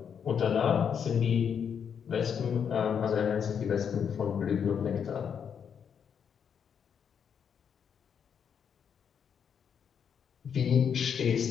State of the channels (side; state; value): right; quieter; 7.5 dB